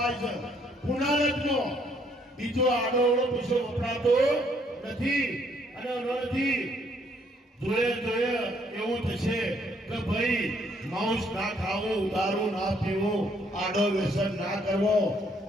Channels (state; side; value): normal; both; correlation 0.67